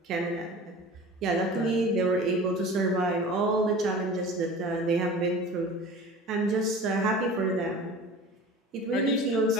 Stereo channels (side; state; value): both; normal; correlation 0.39